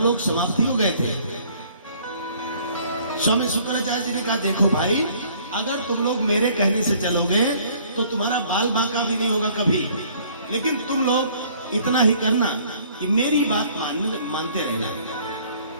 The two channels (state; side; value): inverted; both; correlation -0.58